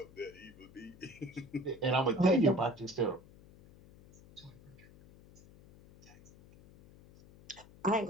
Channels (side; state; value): left; noise; hum, 22 dB below the sound